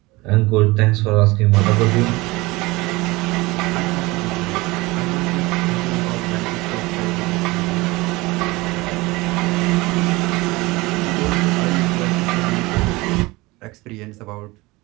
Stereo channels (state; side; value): quieter; left; 22.1 dB